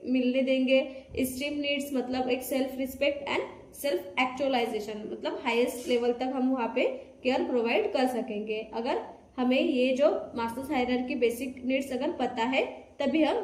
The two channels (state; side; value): identical; both; correlation 1.00